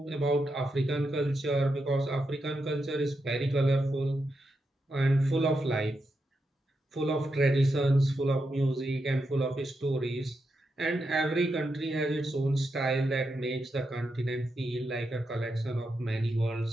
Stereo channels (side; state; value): both; normal; correlation 0.85